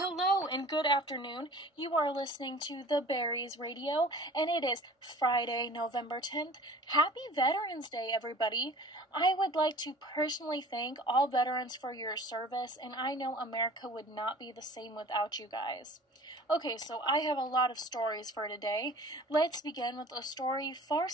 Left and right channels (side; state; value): both; normal; correlation 0.44